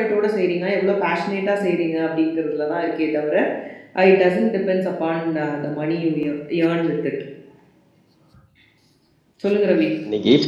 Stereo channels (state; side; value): identical; both; correlation 1.00